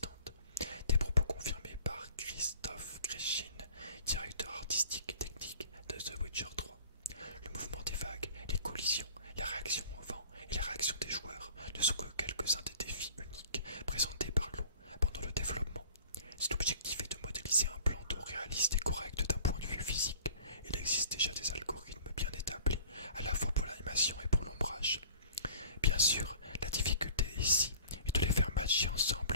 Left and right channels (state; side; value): inverted; both; correlation -0.48